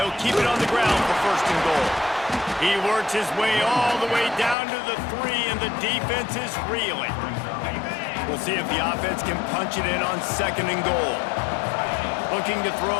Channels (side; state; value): right; drops out; at 4.5 s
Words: keep it on the ground for first and goal. He works his way all the way down to the 3, and the defense is reeling. We'll see if the offense can punch it in on second and goal. Looking to